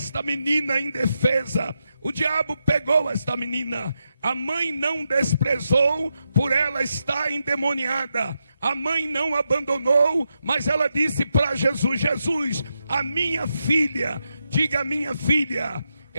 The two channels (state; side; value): inverted; both; correlation -0.85